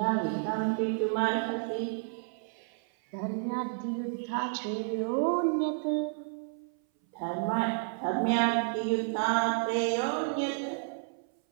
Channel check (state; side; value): silent; left; 57 dB below the other